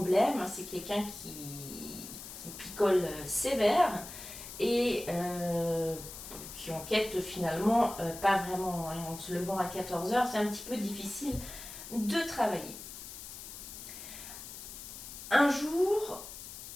C'est quelqu'un qui picole sévère, et qui enquête finalement pas vraiment. En se levant à 14h, c'est un petit peu difficile de travailler. Un jour,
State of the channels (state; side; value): noise; left; hiss, 12 dB below the sound